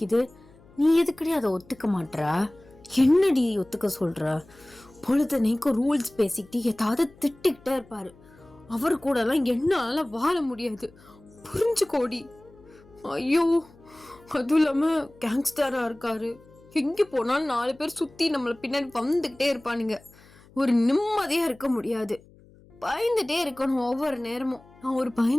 நீ எதுக்கடி அதை ஒத்துக்க மாட்டா? என்னடி ஒத்துக்க சொல்கிற? பொழுதனைக்கும் ரூல்ஸ் பேசிக்கிட்டு ஏதாவது திட்டிக்கிட்டே இருப்பார். அவர் கூடலாம் என்னால் வாழ முடியாது, புரிஞ்சுக்கோடி. ஐயோ, அதுவும் இல்லாமல் கேங்ஸ்டராக இருக்காரு. எங்கே போனாலும் 4 பேர் சுற்றி நம்மளை பின்னாடி வந்துக்கிட்டே இருப்பானுங்க. ஒரு நிம்மதியாக இருக்க முடியாது, பயந்துட்டே இருக்கணும் ஒவ்வொரு நேரமும். நான் ஒரு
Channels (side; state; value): left; noise; hum, 26 dB below the sound